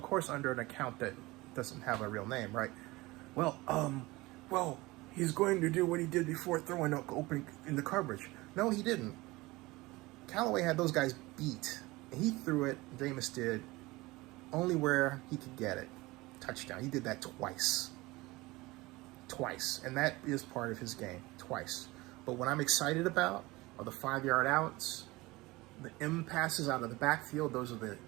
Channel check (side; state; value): left; quieter; 21.2 dB